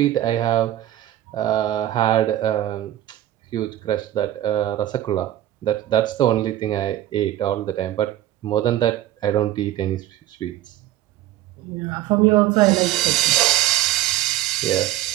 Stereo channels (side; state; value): left; quieter; 13.6 dB